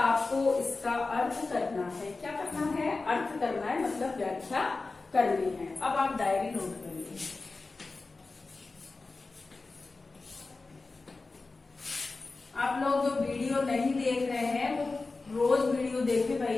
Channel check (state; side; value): quieter; right; 3.7 dB